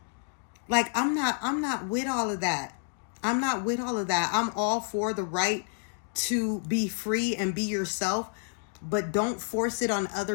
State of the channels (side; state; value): right; silent; 58 dB below the other